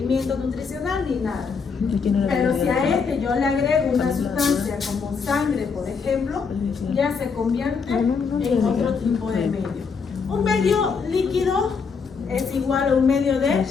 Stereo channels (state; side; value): quieter; right; 5.5 dB